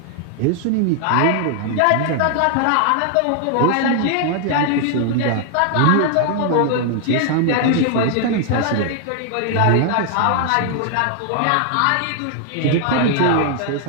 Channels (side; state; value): both; different; correlation 0.00